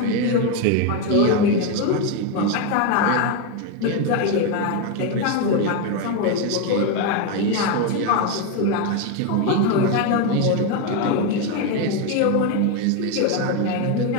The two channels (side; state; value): both; different; correlation 0.02